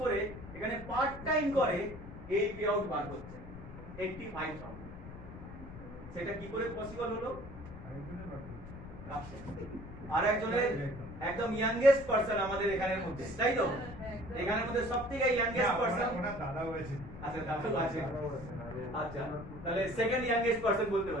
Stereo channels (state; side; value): noise; left; rumble, 13 dB below the sound